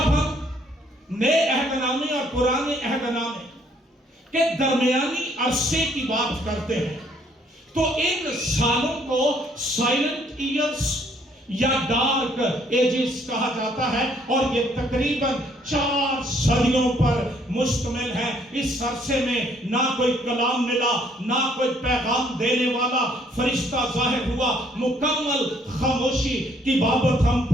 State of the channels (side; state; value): both; normal; correlation 0.65